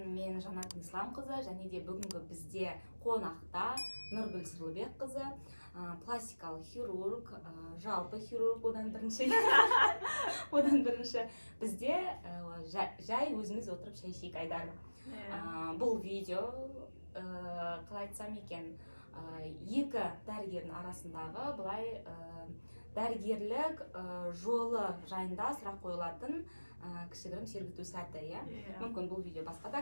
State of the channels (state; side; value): inverted; both; correlation -1.00